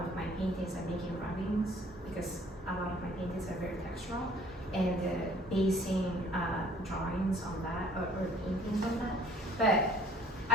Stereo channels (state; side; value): normal; both; correlation 0.54